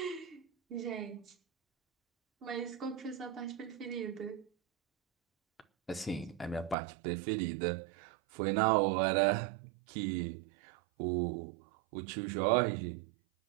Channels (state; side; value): drops out; left; at 6.8 s